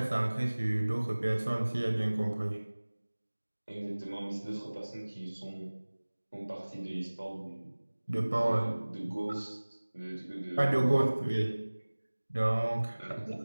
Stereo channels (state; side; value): inverted; both; correlation -1.00